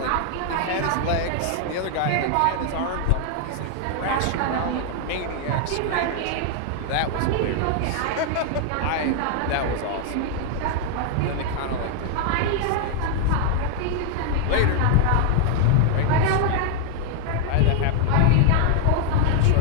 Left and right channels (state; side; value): different; both; correlation 0.00